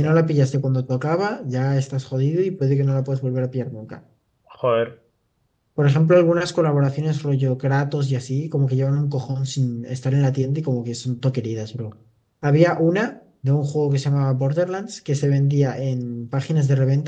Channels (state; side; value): identical; both; correlation 1.00